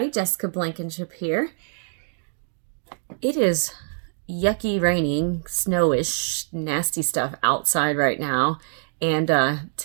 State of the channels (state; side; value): silent; left; digital silence